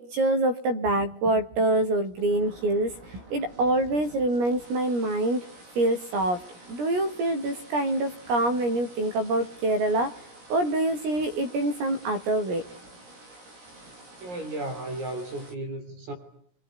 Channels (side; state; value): left; late; 17 ms